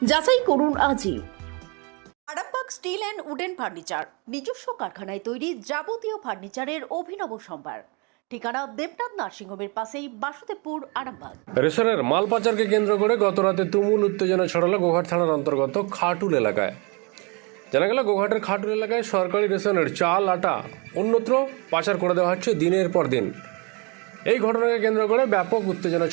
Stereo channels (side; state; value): left; quieter; 31.1 dB